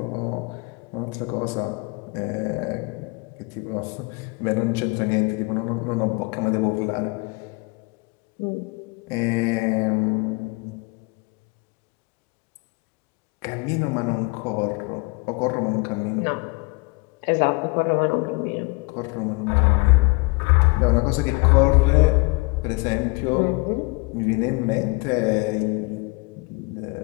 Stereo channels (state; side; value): quieter; right; 27.8 dB